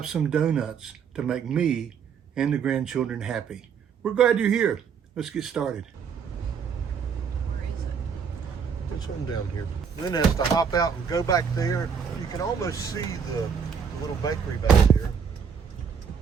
some donuts to make me and the grandchildren happy. We're glad you're here. Let's get started. Where is it? It's one down here. Lynn has to hop out and go back there. You can almost see the little bakery back there.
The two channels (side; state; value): left; quieter; 6.7 dB